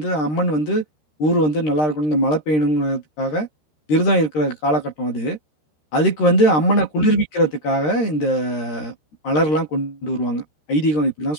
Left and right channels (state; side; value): late; right; 13 ms